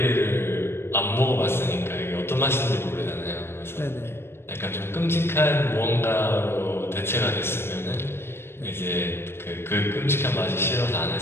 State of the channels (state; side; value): late; right; 0.12 ms